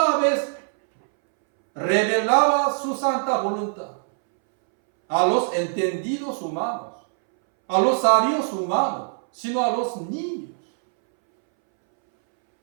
vez revelaba su santa voluntad a los entendidos humanos, a los sabios humanos, sino a los niños.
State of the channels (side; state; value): left; silent; 64 dB below the other